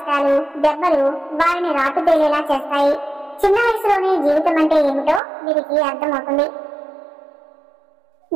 దెబ్బలు వారిని రాటుదేలేలా చేస్తాయి. చిన్న వయసులోనే జీవితం అంటే ఏమిటో వీరికి అర్థమవుతుంది.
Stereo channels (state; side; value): drops out; left; at 5.2 s